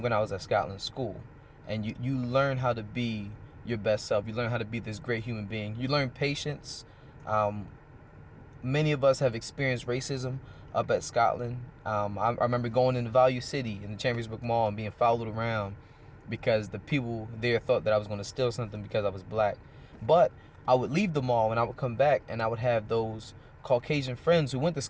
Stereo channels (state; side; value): identical; both; correlation 1.00